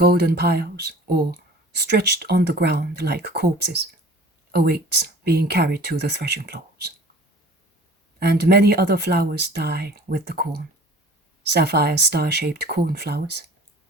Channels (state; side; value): normal; both; correlation 0.45